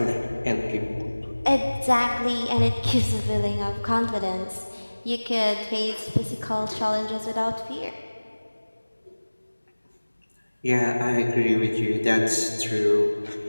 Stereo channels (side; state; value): both; inverted; correlation -1.00